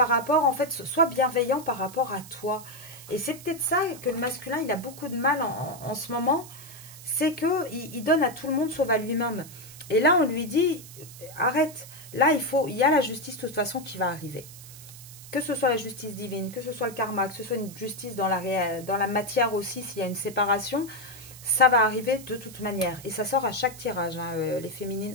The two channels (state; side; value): noise; right; hiss, 17 dB below the sound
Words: rapport, en fait, sois bienveillant par rapport à toi. Et c'est peut-être ça que le masculin, il a beaucoup de mal en ce moment. C'est qu'il donne à tout le monde sauf à lui-même. Et là, on lui dit, arrête. Là, il y a la justice de toute façon qui va arriver. Que ce soit la justice divine, que ce soit le karma, que ce soit une justice dans la matière aussi, s'il y a une séparation, ça va arriver de toute manière. Et ça sort à chaque tirage, les